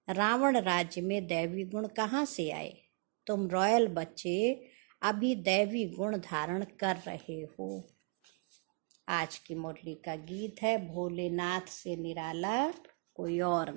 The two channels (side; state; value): left; quieter; 37.2 dB